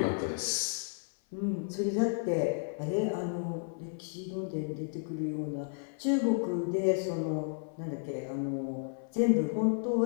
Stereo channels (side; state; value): right; silent; 56 dB below the other